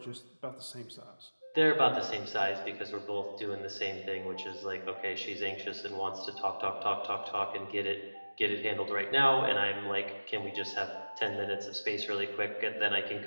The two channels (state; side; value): inverted; both; correlation -1.00